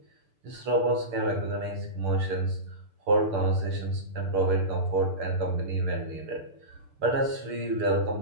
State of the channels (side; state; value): left; late; 6.8 ms